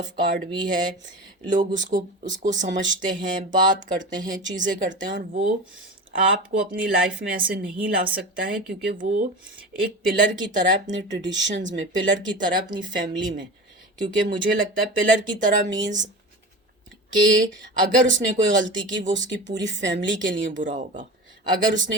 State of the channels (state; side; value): normal; both; correlation 0.30